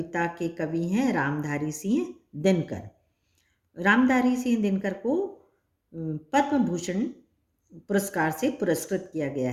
के कवि हैं रामधारी सिंह दिनकर। रामधारी सिंह दिनकर को पद्म भूषण पुरस्कार से पुरस्कृत किया गया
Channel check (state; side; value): identical; both; correlation 1.00